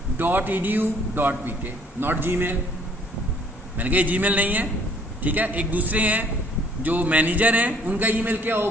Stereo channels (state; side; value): normal; both; correlation 0.60